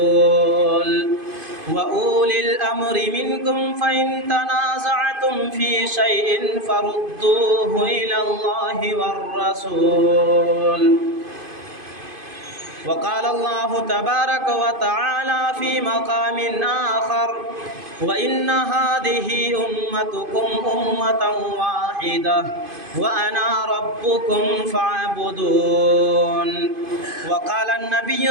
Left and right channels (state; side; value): late; left; 2.5 ms